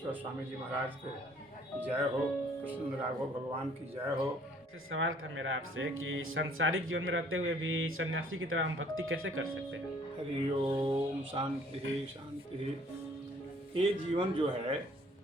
स्वामी जी महाराज के जय हो, कृष्ण राघव भगवान की जय हो। सवाल था मेरा आपसे कि सांसारिक जीवन में रहते हुए भी सन्यासी की तरह हम भक्ति कैसे कर सकते हैं। हरि ओम शांति शांति। ये जीवन जो है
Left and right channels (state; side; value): normal; both; correlation 0.58